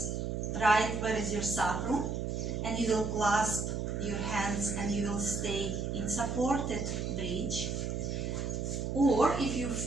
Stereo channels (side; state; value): right; noise; hum, 2 dB below the sound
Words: right where is your sacrum, and you will clasp your hands and you will stay in supported bridge. Or if you